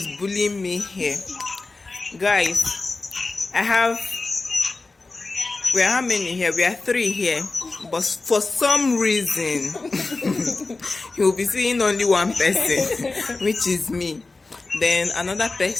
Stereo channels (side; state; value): right; quieter; 3.5 dB